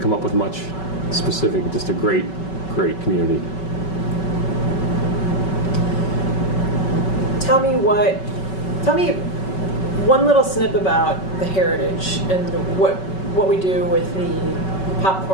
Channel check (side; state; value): right; late; 5.3 ms